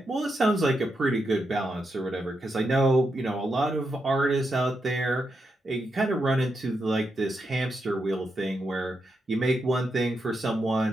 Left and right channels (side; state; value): both; normal; correlation 0.84